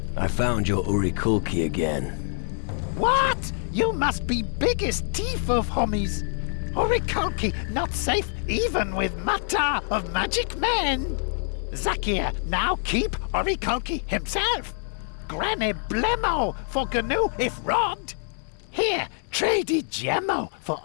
I found your Urikulki again. What? You must be biggest thief of homies. Urikulki not safe even with Mata of Magic Men. Zakir now keep Urikulki himself. Granny Blemo for Gnu if robbed. Here, trade Gemmo for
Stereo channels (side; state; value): right; silent; 61 dB below the other